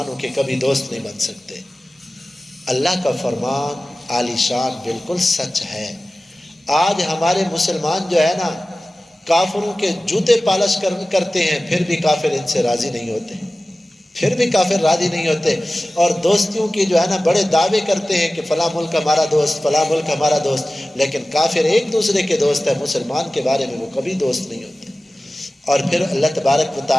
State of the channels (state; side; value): normal; both; correlation 0.96